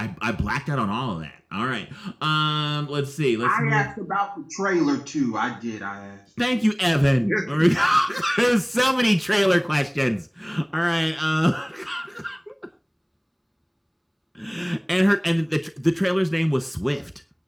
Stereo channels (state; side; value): identical; both; correlation 1.00